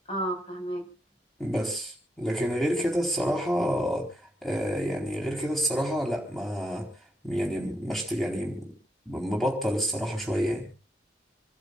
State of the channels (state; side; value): normal; both; correlation 0.81